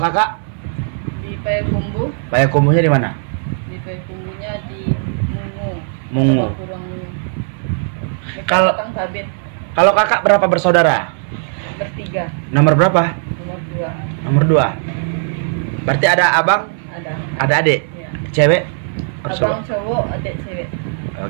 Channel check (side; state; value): left; silent; 62 dB below the other